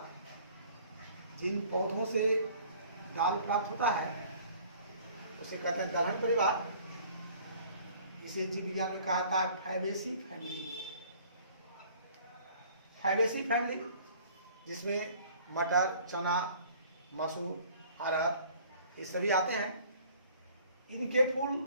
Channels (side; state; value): both; inverted; correlation -0.53